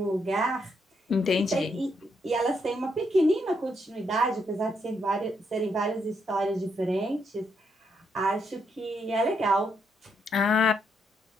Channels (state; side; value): normal; both; correlation 0.77